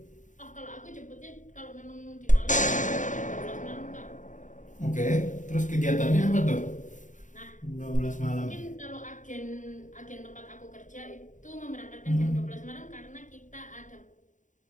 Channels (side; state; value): right; late; 0.36 ms